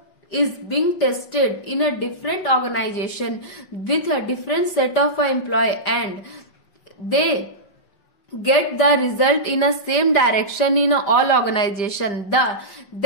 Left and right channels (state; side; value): late; right; 5.4 ms